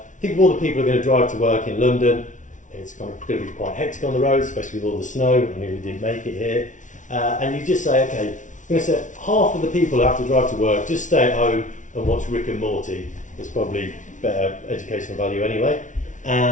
think of all the people who are going to drive to work in London. It's kind of going to be quite hectic on the roads, especially with all the snow. I nearly didn't make it here. And you just say, okay, I'm going to say half of the people who have to drive to work, just stay at home and watch Rick and Morty. It's probably better educational value anyway.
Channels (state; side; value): late; right; 0.37 ms